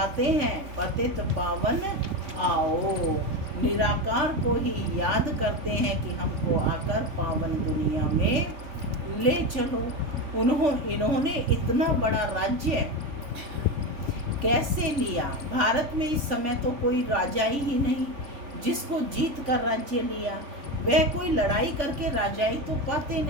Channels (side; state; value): left; late; 3.5 ms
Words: हैं पतित पावन आओ। निराकार को ही याद करते हैं कि हमको आकर पावन दुनिया में ले चलो। इन्होंने इतना बड़ा राज्य कैसे लिया। भारत में इस समय तो कोई राजा ही नहीं जिसको जीत कर राज्य लिया। वह कोई लड़ाई करके राजाई तो पाते